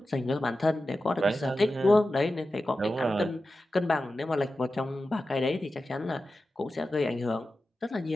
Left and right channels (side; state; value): both; normal; correlation 0.93